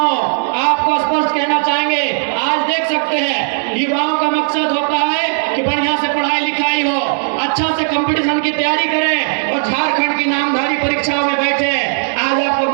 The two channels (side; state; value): left; silent; digital silence